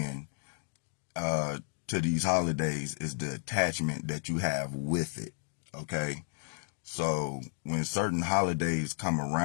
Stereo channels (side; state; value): right; silent; digital silence